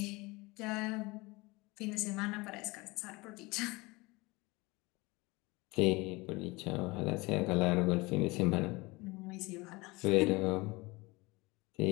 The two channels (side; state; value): right; quieter; 23.6 dB